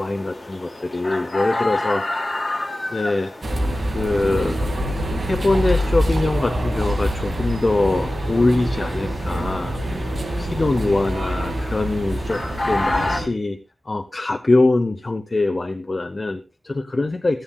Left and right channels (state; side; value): normal; both; correlation 0.96